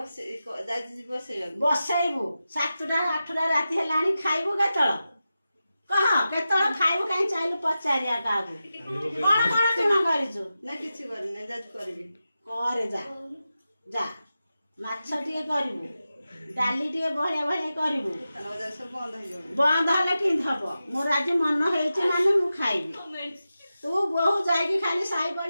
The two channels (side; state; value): both; inverted; correlation -0.92